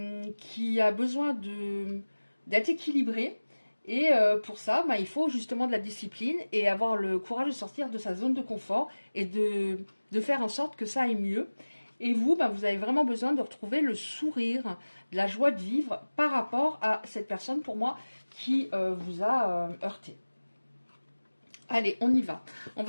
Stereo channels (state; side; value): inverted; both; correlation -1.00